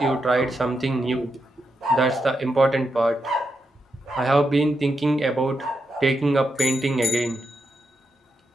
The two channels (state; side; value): normal; both; correlation 0.85